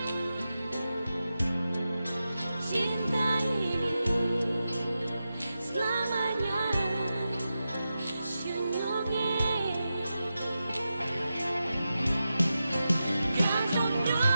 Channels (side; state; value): both; inverted; correlation -0.91